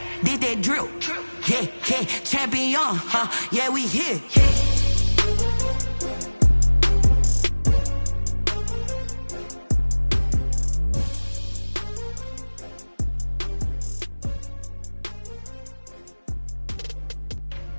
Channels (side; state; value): both; inverted; correlation -1.00